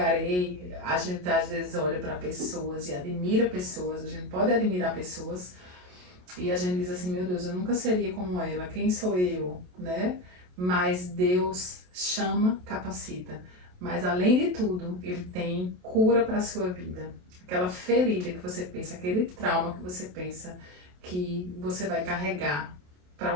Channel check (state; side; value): late; left; 28 ms